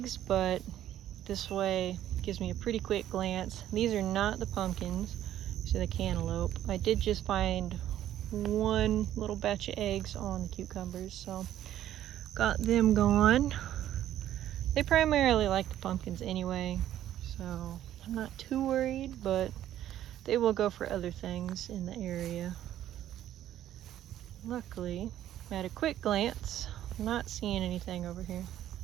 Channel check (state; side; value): quieter; left; 12.0 dB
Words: but this way gives me a pretty quick glance. These are not the pumpkins, so the cantaloupe. I did just find one little batch of eggs on the cucumbers, so got them gone. They primarily like the pumpkins anyway, so I'm not too worried, but they will go for other things in the area. Luckily, at a quick glance, I'm not seeing anything over here.